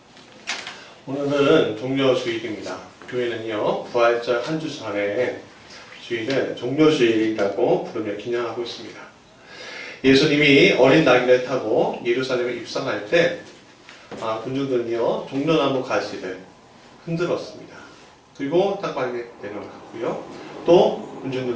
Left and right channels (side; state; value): both; identical; correlation 1.00